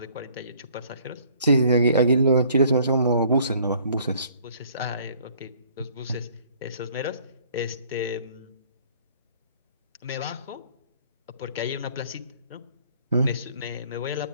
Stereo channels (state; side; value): inverted; both; correlation -0.58